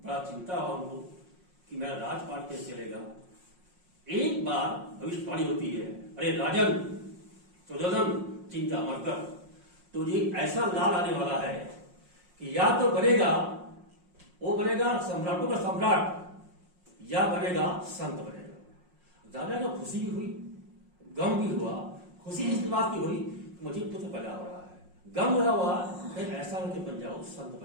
चिंता हुआ उनको कि मेरा राजपाट कैसे चलेगा। एक बार भविष्यवाणी होती है, अरे राजन सुजोधन चिंता मत कर, तुझे ऐसा लाल आने वाला है कि या तो बनेगा वो बनेगा सम्राटों का सम्राट, या बनेगा संत बनेगा। राजा को खुशी भी हुई, गम भी हुआ। खुशी इस बात की हुई मुझे पुत्र पैदा हो रहा है, गम हुआ ऐसा होकर बन जाओ, संत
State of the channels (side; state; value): left; late; 5.5 ms